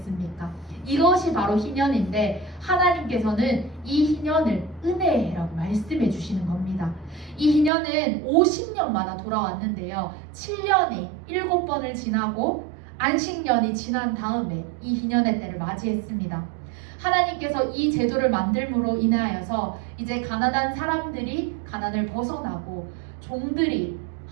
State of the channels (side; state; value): left; drops out; at 7.7 s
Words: 이것이 바로 희년인데 하나님께서는 이 희년을 은혜의 해라고 말씀해 주시는 겁니다. 이 희년은 50년마다 돌아왔는데요. 7년이 7번을 지나고 안식년이 지난 다음에 이 희년의 때를 맞이했습니다. 하나님께서 이 제도를 만들므로 인하여서 이제 가난한 사람들이 가난을 벗어나고 종들이